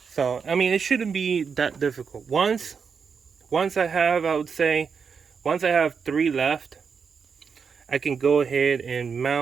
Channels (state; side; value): quieter; left; 6.0 dB